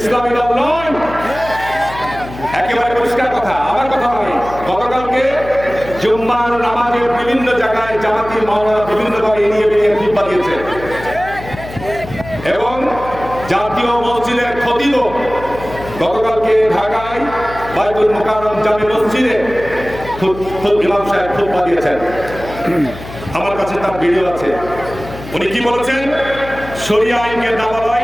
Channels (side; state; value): left; noise; hum, 13 dB below the sound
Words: ইসলামী দল নয়, একেবারে পরিষ্কার কথা, আমার কথা নয়। গতকালকে জুম্মার নামাজের বিভিন্ন জায়গায় জামাতি মাওলানা বিভিন্ন ভাবে এড়িয়ে বেরিয়ে খুতবা দিয়েছে এবং জাতীয় মসজিদের খতিব গতকালকে ঢাকায় বাইতুল মুকাররম জামে মসজিদে ইমাম সাহেব খুতবা দিয়েছেন। আমার কাছে তার ভিডিও আছে। উনি কি বলেছেন? শরিয়া আইনকে